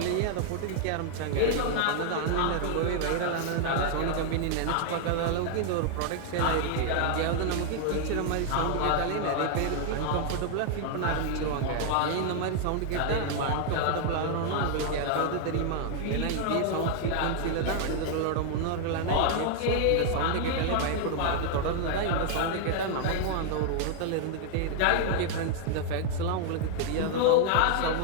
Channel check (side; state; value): both; different; correlation 0.00